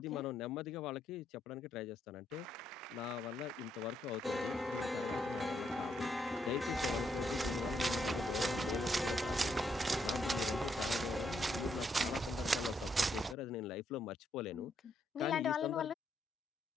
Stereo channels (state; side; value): normal; both; correlation 0.76